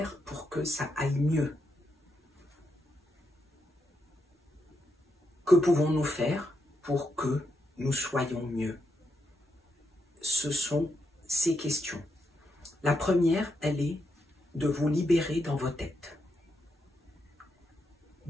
pour que ça aille mieux? Que pouvons-nous faire pour que nous soyons mieux? Ce sont ces questions. La première, elle est de vous libérer dans vos têtes.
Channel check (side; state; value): both; normal; correlation 0.82